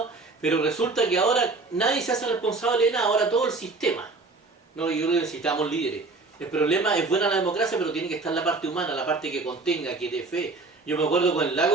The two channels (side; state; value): left; quieter; 3.6 dB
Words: pero resulta que ahora nadie se hace responsable de nada, ahora todo el sistema. No, yo creo que necesitamos líderes. El problema es buena la democracia, pero tiene que estar la parte humana, la parte que contenga, que dé fe. Yo me acuerdo con el